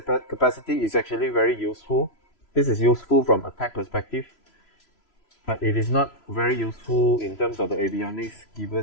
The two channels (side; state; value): right; late; 3.0 ms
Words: capacity is actually very useful. This is useful from attack perspective, but it is not very useful in terms of the avionics